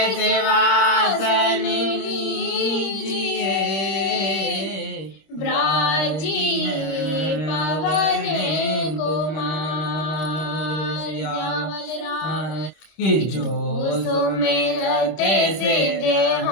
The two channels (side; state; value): right; late; 26 ms